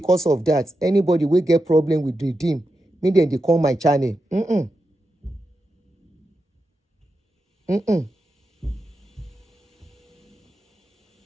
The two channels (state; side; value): normal; both; correlation 0.88